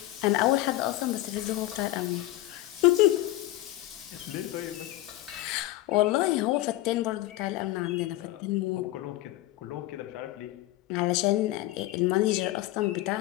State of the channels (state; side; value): quieter; right; 16.6 dB